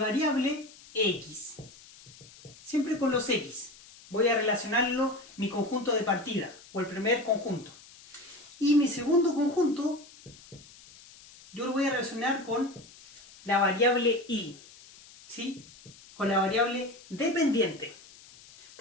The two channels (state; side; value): noise; left; hiss, 22 dB below the sound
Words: x. Siempre con los x. Voy a relacionarlo mi conjunto de partida, o el primer conjunto. Y mi segundo conjunto, yo lo voy a relacionar con la variable y, ¿sí?, con la variable dependiente.